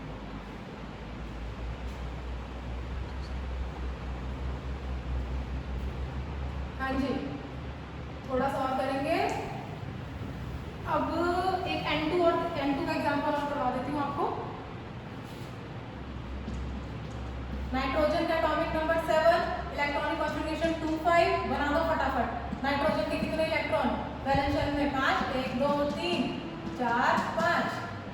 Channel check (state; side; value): identical; both; correlation 1.00